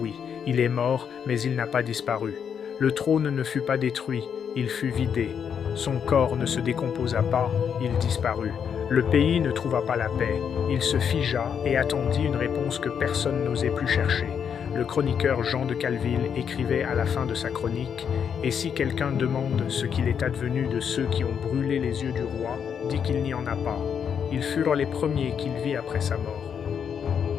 Il est mort, mais il n'a pas disparu. Le trône ne fut pas détruit, il fut vidé. Son corps ne se décomposa pas, il disparut. Le pays ne trouva pas la paix. Il se figea et attendit une réponse que personne n'osait plus chercher. Le chroniqueur Jean de Calville écrivait à la fin de sa chronique « Et si quelqu'un demande ce qu'il est advenu de ceux qui ont brûlé les yeux du roi, dit qu'il n'y en a pas. Ils furent les premiers qu'il vit après sa mort.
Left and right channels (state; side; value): quieter; right; 7.5 dB